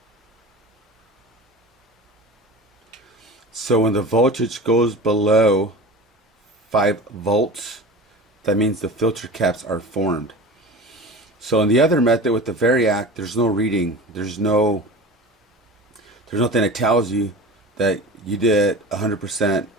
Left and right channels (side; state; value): both; normal; correlation 0.34